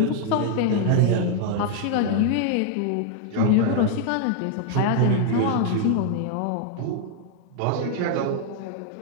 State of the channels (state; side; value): different; both; correlation 0.00